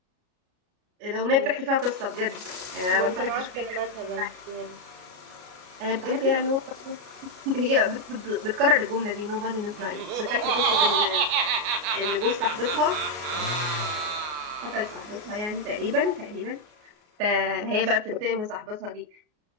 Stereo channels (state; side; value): late; left; 33 ms